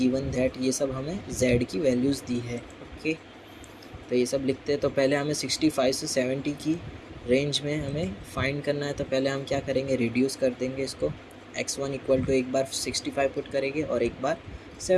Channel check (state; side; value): identical; both; correlation 1.00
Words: that, ये सब हमें z की वैल्यूज़ दी है। ओके, तो ये सब लिखते हैं। तो पहले हमें 65 से 70 की रेंज में हमें फाइंड करना है, तो पहले हम क्या करेंगे, रिड्यूस कर देंगे इसको। x1 = एक बार 65 पुट करेंगे और एक बार